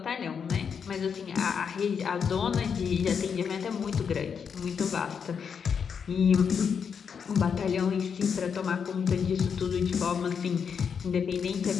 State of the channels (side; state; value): right; quieter; 6.7 dB